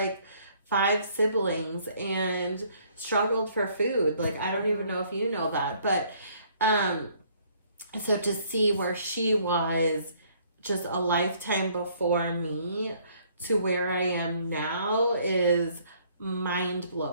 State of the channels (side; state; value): both; inverted; correlation -0.63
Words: 5 siblings and struggled for food. Like, I don't even know if you know that, but so to see where she was just a lifetime before me to where I am now is